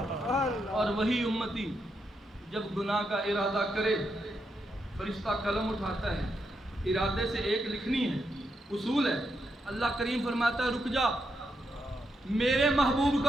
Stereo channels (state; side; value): normal; both; correlation 0.82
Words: اور وہی امتی جب گناہ کا ارادہ کرے فرشتہ قلم اٹھاتا ہے، ارادے سے ایک لکھنی ہے، اصول ہے۔ اللہ کریم فرماتا ہے رک جا، میرے محبوب